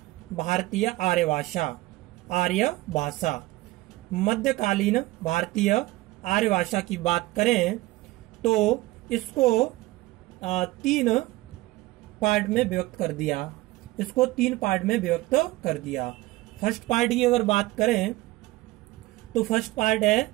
आर्य भाषा। मध्यकालीन भारतीय आर्य भाषा की बात करें तो इसको तीन पार्ट में विभक्त कर दिया। फर्स्ट पार्ट की अगर बात करें तो फर्स्ट पार्ट है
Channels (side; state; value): left; quieter; 19.2 dB